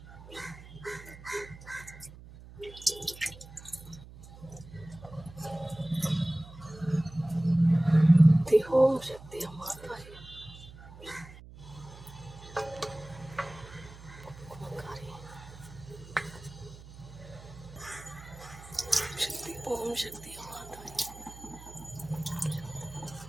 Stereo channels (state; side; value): noise; right; hum, 17 dB below the sound